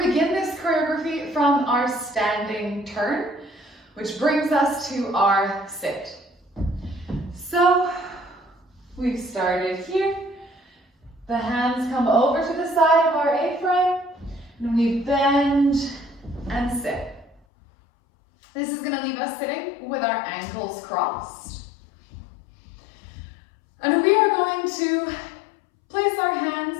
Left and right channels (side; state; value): right; drops out; at 17.4 s